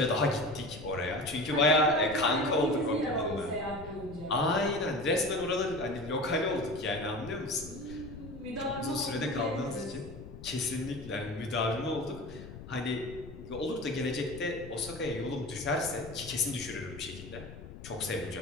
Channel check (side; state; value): left; noise; rumble, 13 dB below the sound